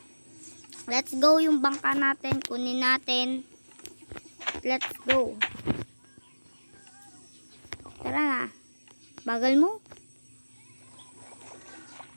Let's go yung bangka natin. Kunin natin. Let's go. Tara na. Bagal mo.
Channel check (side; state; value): both; inverted; correlation -1.00